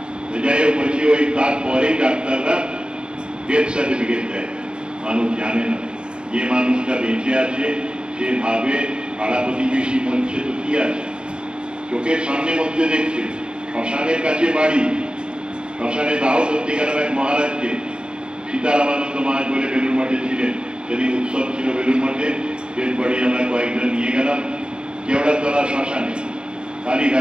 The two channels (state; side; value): late; left; 0.051 ms